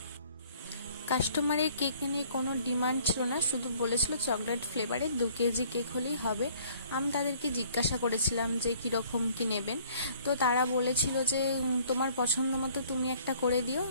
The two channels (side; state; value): both; inverted; correlation -0.57